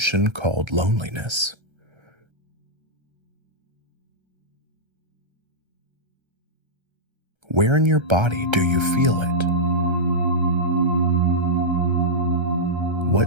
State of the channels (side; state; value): left; late; 1.3 ms